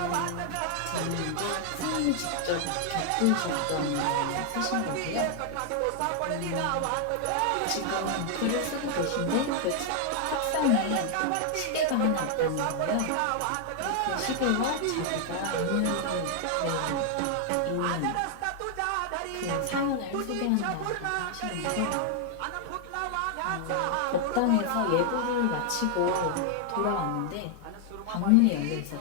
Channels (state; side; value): different; both; correlation 0.00